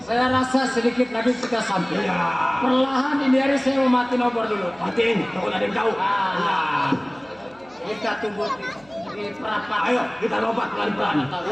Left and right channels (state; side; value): noise; right; hum, 28 dB below the sound